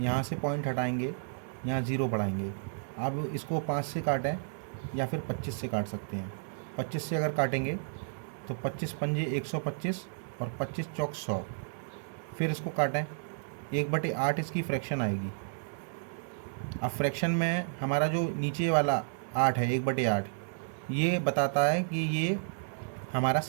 से पॉइंट हटाएंगे, यहाँ 0 बढ़ाएंगे। अब इसको 5 से काटें या फिर 25 से काट सकते हैं। 25 से अगर काटेंगे तो 25 पंजे 125 और 25 चौक 100। फिर इसको काटें, 1/8 इसकी फ्रैक्शन आएगी। अब फ्रैक्शन में हमारा जो नीचे वाला 8 है, 1/8, ये बताता है कि ये हमारा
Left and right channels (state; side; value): silent; left; 56 dB below the other